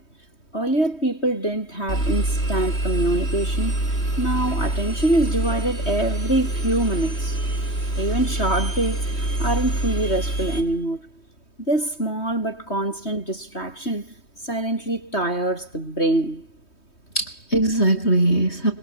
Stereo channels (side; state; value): right; late; 3.2 ms